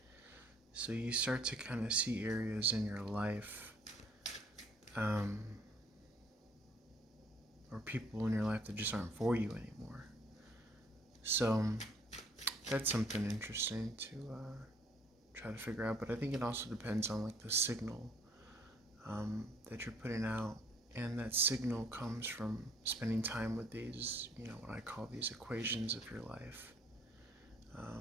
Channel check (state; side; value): normal; both; correlation 0.60